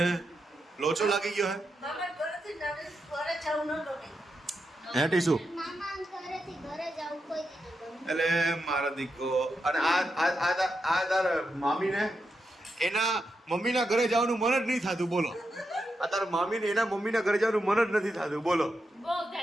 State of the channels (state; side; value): normal; both; correlation 0.85